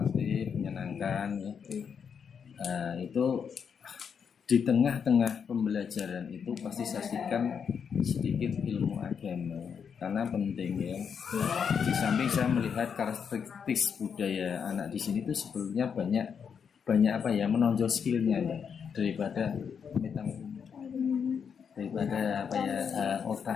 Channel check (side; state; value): right; quieter; 6.9 dB